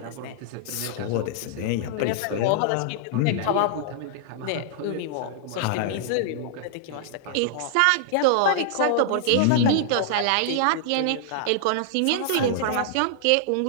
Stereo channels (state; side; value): different; both; correlation -0.01